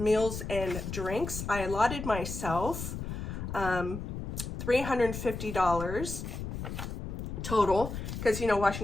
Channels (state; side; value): noise; left; rumble, 6 dB below the sound